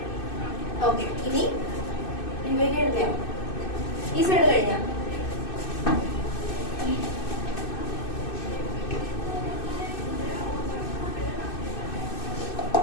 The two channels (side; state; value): right; late; 2.6 ms